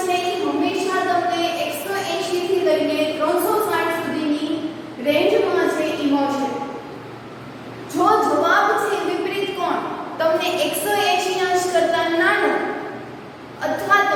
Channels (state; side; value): identical; both; correlation 1.00